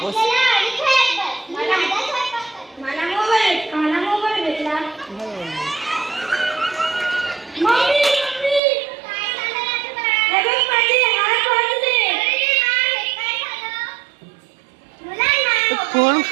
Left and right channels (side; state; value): left; drops out; at 8.6 s